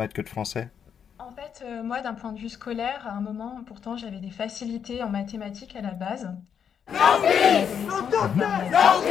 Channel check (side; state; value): right; quieter; 7.8 dB